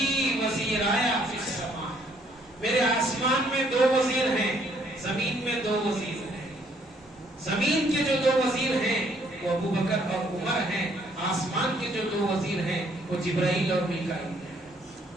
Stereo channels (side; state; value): both; normal; correlation 0.66